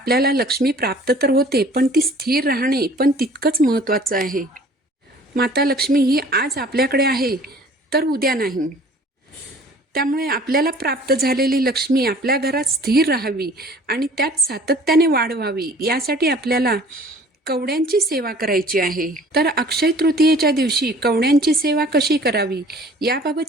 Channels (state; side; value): normal; both; correlation 0.50